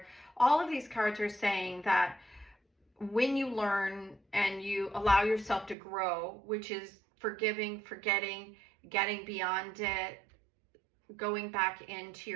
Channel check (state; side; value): drops out; left; at 5.8 s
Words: All of these cards are saying that when you learn and you allow yourself to grow, which is forgiving, forgetting, getting beyond it, going back into